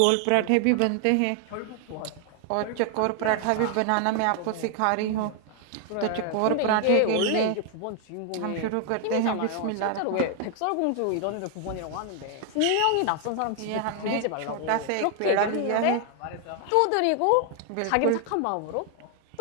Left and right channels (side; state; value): both; different; correlation 0.00